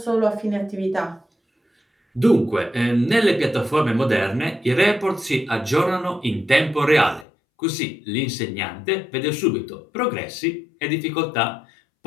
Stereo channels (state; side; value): drops out; right; at 7.2 s